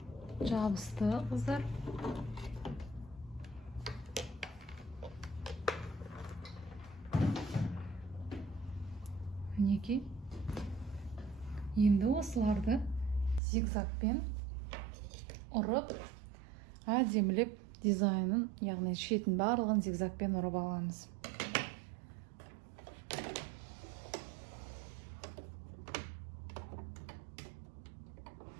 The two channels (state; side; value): drops out; left; at 13.4 s